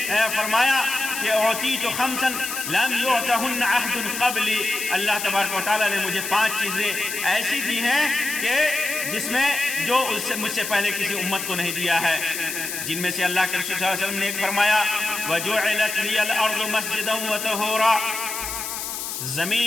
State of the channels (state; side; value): noise; left; hiss, 5 dB below the sound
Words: فرمایا کہ اعطیت خمسا لم یعطہن عہد قبلی، اللہ تبارک و تعالیٰ نے مجھے 5 چیزیں ایسی دی ہیں کہ جس میں جو مجھ سے پہلے کسی امت کو نہیں دیا ہے، جن میں سے اللہ کے رسول صلی اللہ علیہ وسلم نے ایک فرمایا وَجُعِلَتْ لِيَ الْأَرْضُ مَسْجِدًا وَطَهُورًا،